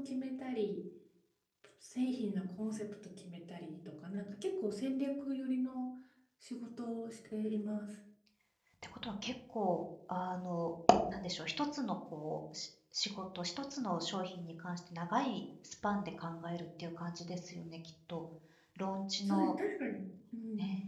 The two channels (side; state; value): both; identical; correlation 1.00